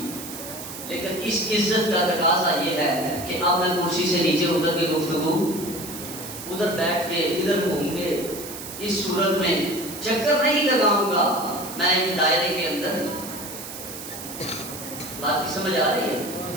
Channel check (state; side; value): noise; right; hiss, 11 dB below the sound